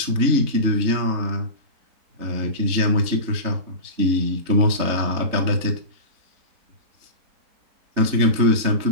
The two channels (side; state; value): left; late; 3.4 ms